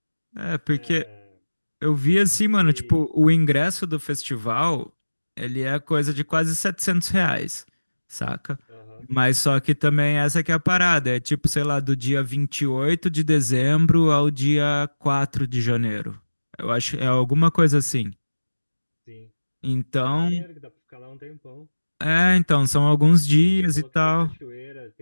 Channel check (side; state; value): both; inverted; correlation -1.00